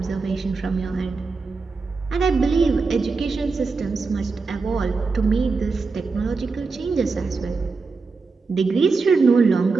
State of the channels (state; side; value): quieter; left; 4.3 dB